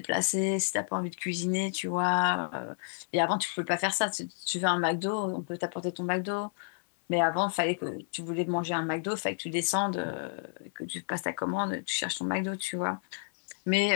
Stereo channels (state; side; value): silent; right; 57 dB below the other